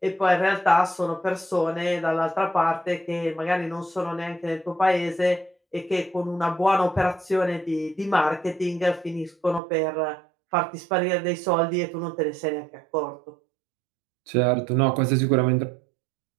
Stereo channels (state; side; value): drops out; left; at 9.6 s